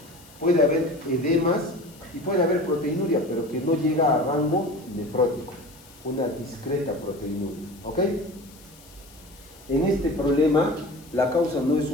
puede haber edemas y puede haber proteinuria, pero que no llega a rango nefrótico, una discreta proteinuria, ¿ok? En este problema, la causa no es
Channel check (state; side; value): noise; left; hiss, 24 dB below the sound